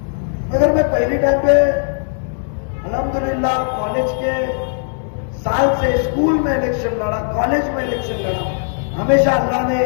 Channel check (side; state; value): right; silent; digital silence